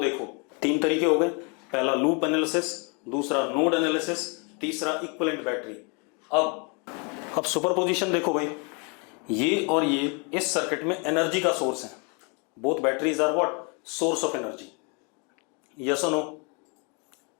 देखो, 3 तरीके हो गए। पहला लूप एनालिसिस, दूसरा नोड एनालिसिस, तीसरा इक्विवेलेंट बैटरी। अब सुपरपोजिशन देखो भाई, ये और ये इस सर्किट में एनर्जी का सोर्स है। Both batteries are what? Source of energy. Yes और नो?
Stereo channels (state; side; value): quieter; right; 33.8 dB